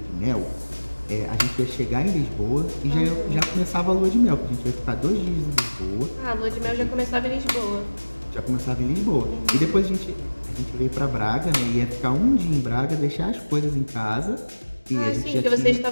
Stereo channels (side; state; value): both; inverted; correlation -1.00